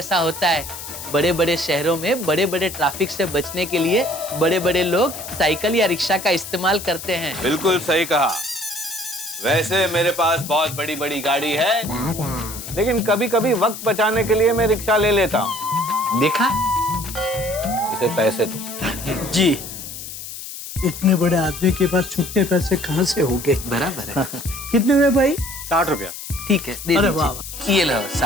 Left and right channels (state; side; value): noise; left; hiss, 10 dB below the sound